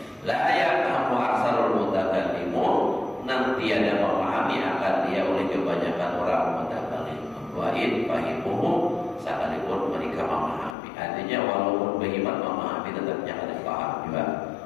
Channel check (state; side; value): drops out; right; at 10.8 s